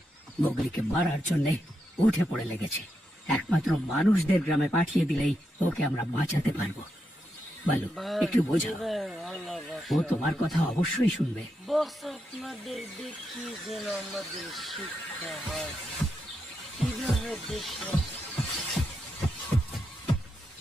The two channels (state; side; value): normal; both; correlation 0.84